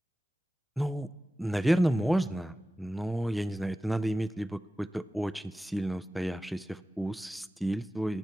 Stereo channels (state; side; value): normal; both; correlation 0.96